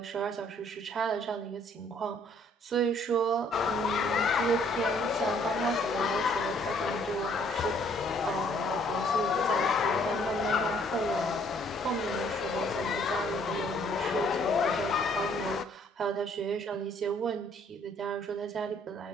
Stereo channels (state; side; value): normal; both; correlation 0.63